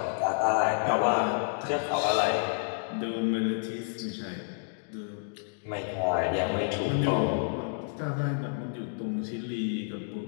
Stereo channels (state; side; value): silent; right; digital silence